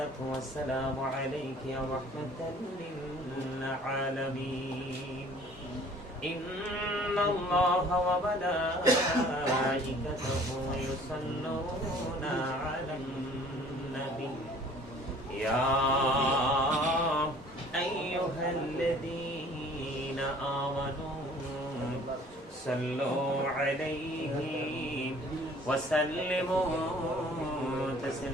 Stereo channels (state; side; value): normal; both; correlation 0.52